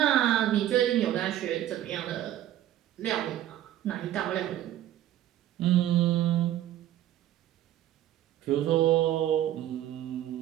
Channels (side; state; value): left; quieter; 12.5 dB